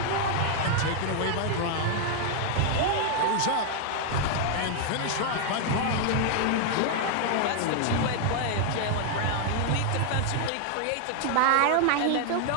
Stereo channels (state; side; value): different; both; correlation 0.00